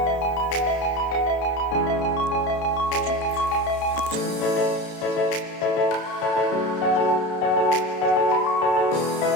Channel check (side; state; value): right; late; 32 ms